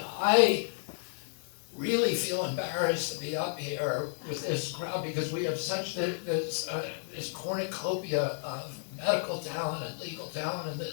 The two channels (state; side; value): silent; right; 57 dB below the other